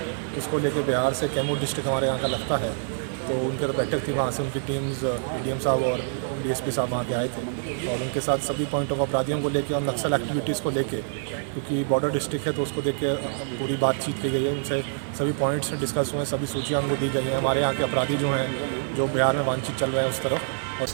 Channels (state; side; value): silent; left; 61 dB below the other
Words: इसको लेकर बिहार से कैमूर डिस्ट्रिक्ट हमारे यहाँ का लगता है, तो उनके तो बैठक थी, वहाँ से उनकी टीम्स डीएम साहब और डीएसपी साहब वहाँ के आए थे और उनके साथ सभी पॉइंट ऑफ अपराधियों को लेके और नक्सल एक्टिविटीज़ को लेके, क्योंकि बॉर्डर डिस्ट्रिक्ट है तो उसको देख के पूरी बातचीत की गई है, उनसे सभी पॉइंट्स डिस्कस हुए, सभी सूचियाँ उनको दी गई हैं, हमारे यहाँ के अपराधी जो हैं जो बिहार में वांछित चल रहे हैं उस तरफ। और